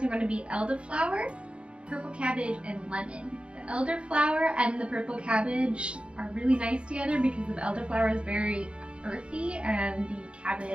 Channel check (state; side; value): late; left; 0.057 ms